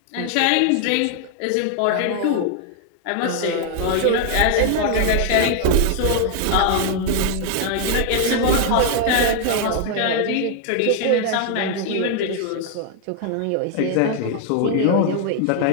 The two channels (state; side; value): different; both; correlation 0.00